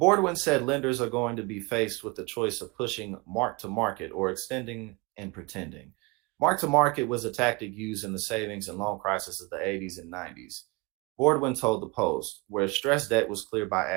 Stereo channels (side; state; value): left; quieter; 25.8 dB